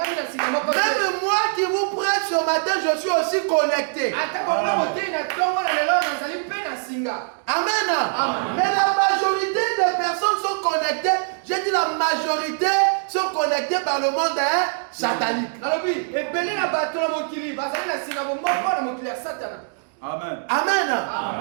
Même moi qui vous prête ce matin, je suis aussi connecté. Amen. Mais la majorité des personnes sont connectées. J'ai dit la majorité sont connectées par le monde satanique. Amen. Amen.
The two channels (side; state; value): left; silent; digital silence